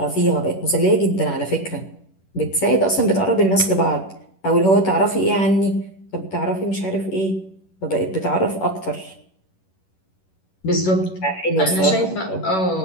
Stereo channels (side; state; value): right; late; 11 ms